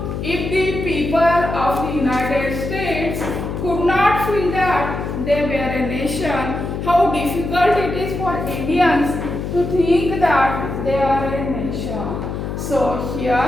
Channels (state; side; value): noise; left; hum, 5 dB below the sound